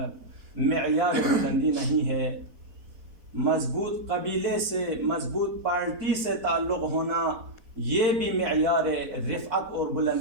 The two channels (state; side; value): late; left; 4.1 ms